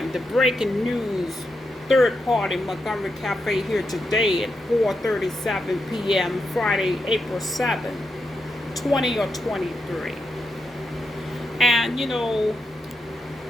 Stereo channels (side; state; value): both; normal; correlation 0.84